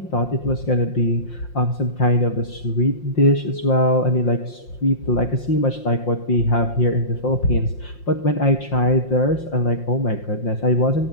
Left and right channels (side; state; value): right; late; 5.7 ms